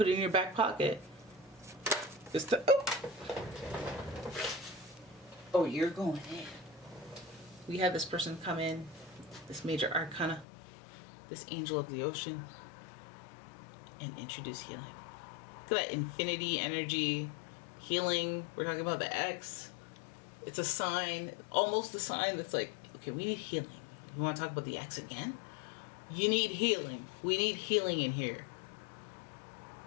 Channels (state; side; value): drops out; right; at 10.5 s